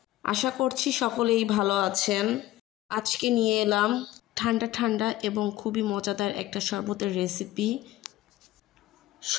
আশা করছি সকলেই ভালো আছেন। আজকে নিয়ে এলাম ঠান্ডা ঠান্ডা এবং খুবই মজাদার একটা শরবতের রেসিপি,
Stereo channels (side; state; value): right; quieter; 15.8 dB